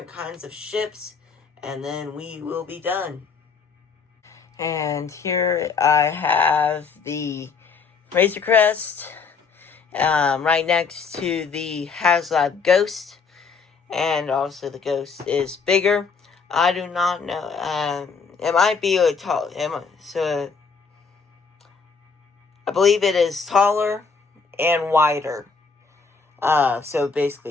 kinds of ships, and then we will be done. And here I have the Razor Crest right next to the HasLab Ghost, and also the Ghost is bigger. I do not know. It might be a tall. So I believe it is taller and wider. So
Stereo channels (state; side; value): quieter; right; 5.2 dB